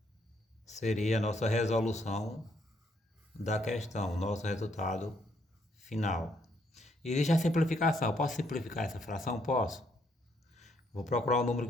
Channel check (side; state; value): both; normal; correlation 0.71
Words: seria a nossa resolução da questão, nosso resultado final. Existe a simplificação. Posso simplificar essa fração? Posso. Vou procurar um número